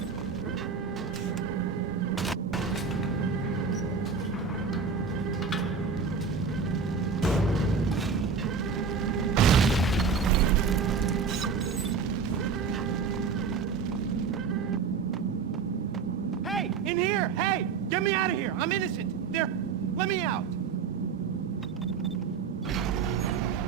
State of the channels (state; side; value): quieter; left; 5.5 dB